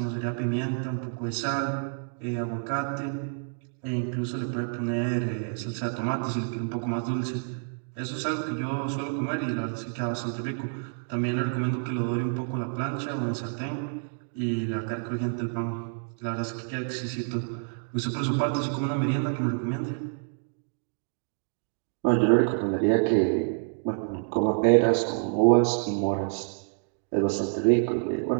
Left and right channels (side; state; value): left; silent; digital silence